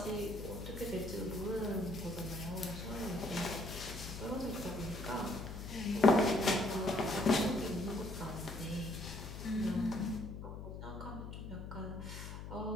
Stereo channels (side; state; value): left; noise; hum, 8 dB below the sound